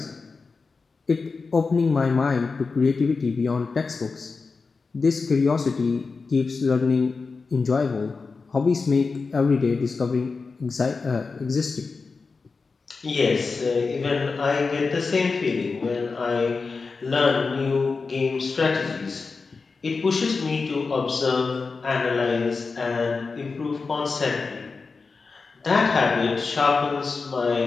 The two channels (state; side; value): quieter; right; 4.4 dB